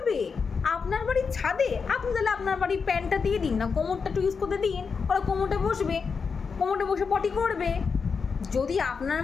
আপনার বাড়ির ছাদে? আপনি তাহলে আপনার বাড়ির প্যান্টটা দিয়ে দিন না, কোমরটা একটু ইউজ করতে দিন, ওরা কোমরটা বসে পটি করবে। যদি আপনার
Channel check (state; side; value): quieter; right; 5.4 dB